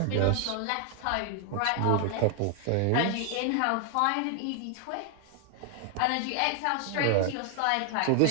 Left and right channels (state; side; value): different; both; correlation 0.00